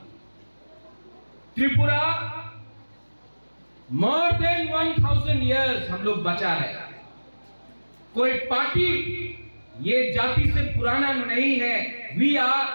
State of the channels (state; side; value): inverted; both; correlation -1.00